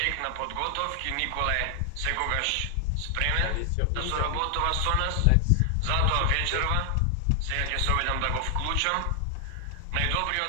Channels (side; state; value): both; different; correlation 0.00